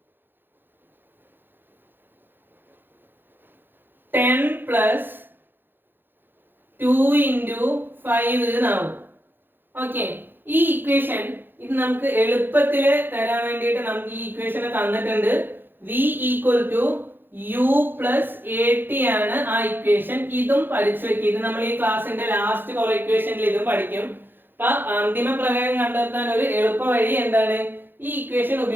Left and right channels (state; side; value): late; left; 0.097 ms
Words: 10 plus 2 into 5 എന്നാവും. ഓക്കെ, ഈ ഇക്വേഷൻ ഇത് നമുക്ക് എളുപ്പത്തിൽ തരാൻ വേണ്ടിയിട്ട് നമുക്ക് ഈ ഇക്വേഷൻ തന്നിട്ടുണ്ട്. v equal to u plus at ആണ് ആ ഇക്വേഷൻ. ഇതും പഠിച്ചു വെക്കുക. ഇത് നമ്മൾ ഈ ക്ലാസ്സിന്റെ ലാസ്റ്റ് കുറെ ഇക്വേഷനിൽ ഇതും പഠിക്കും. അപ്പൊ അന്തിമ പ്രവേഗം കണ്ടെത്താൻ ഒരു എളുപ്പ വഴി എന്താണ്? ഈ ഇക്വേഷൻ